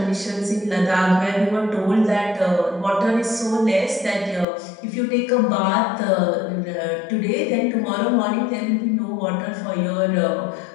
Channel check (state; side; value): drops out; right; at 4.5 s